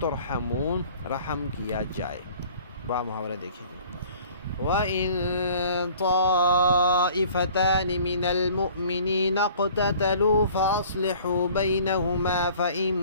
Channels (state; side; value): inverted; both; correlation -0.51